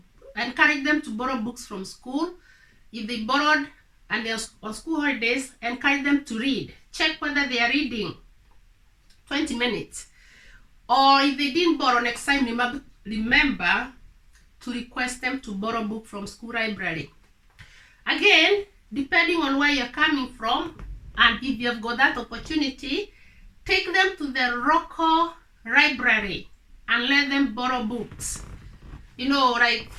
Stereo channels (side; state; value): both; identical; correlation 1.00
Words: encourage them to borrow books from school. If they borrowed and they're on school holidays, encourage them to read. Check whether they are reading 20 minutes. Or if they didn't borrow, next time remember to request them to borrow book from school library. Again, depending on where you're coming from, and if you've got that opportunity, take them to the local library and let them borrow books. You know, like